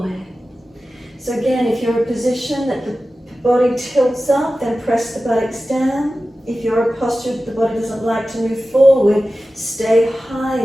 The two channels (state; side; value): normal; both; correlation 0.94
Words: So again, if you're in a position that the body tilts up, then press the buttocks down. If you're in a posture that the body doesn't like to move forward, stay